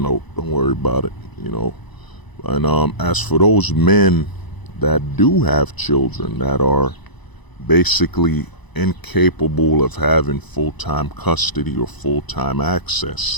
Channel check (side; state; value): right; late; 1.0 ms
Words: Don't worry about it. You know. And as for those men that do have children that are basically incapable of having full-time custody or full-time